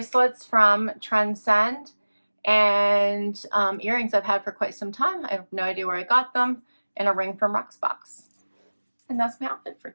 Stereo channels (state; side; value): inverted; both; correlation -1.00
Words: from Trendsend and earrings I've had for quite some time. I have no idea where I got them, and a ring from Rocksbox. And that's my outfit for